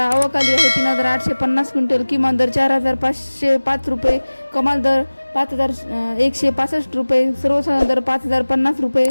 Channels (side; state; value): both; inverted; correlation -1.00